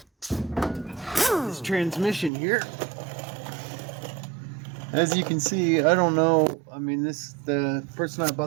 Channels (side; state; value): left; drops out; at 2.3 s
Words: This transmission here, as you can see, I don't know. I mean, the person I